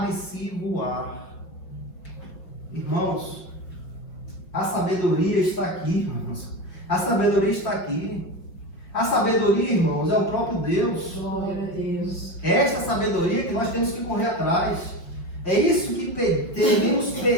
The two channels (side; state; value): right; late; 5.4 ms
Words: Irmãos, a sabedoria está aqui, irmãos. A sabedoria está aqui. A sabedoria, irmãos, é o próprio Deus. Glória a Deus. É esta sabedoria que nós temos que correr atrás. É isso que devemos